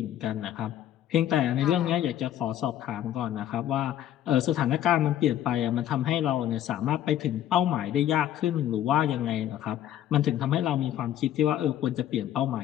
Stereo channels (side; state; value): right; quieter; 11.5 dB